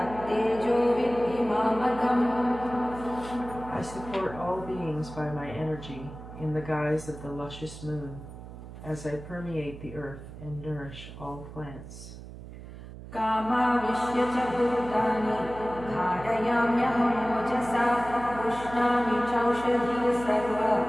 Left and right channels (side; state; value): right; noise; hum, 14 dB below the sound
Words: विद्धि मामकम्. I support all beings by my energy in the guise of the luscious moon, as I permeate the earth and nourish all plants. कामाविश्य च भूतानि धारयाम्यहमोजसा पुष्णामि चौषधी सर्व